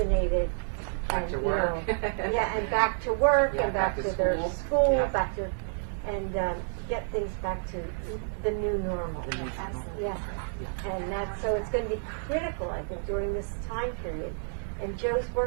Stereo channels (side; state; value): left; silent; digital silence